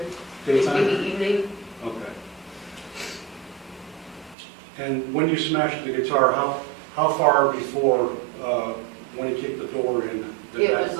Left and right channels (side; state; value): left; drops out; at 4.4 s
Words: Daytime? Maybe evening. Okay. And when you smashed the guitar, how far before, when he kicked the door in? It was